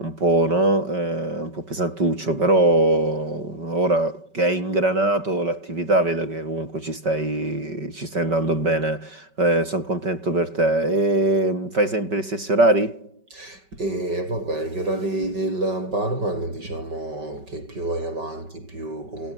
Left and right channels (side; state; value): left; late; 5.2 ms